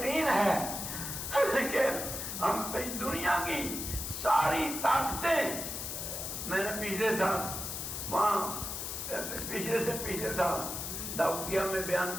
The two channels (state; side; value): noise; left; hiss, 5 dB below the sound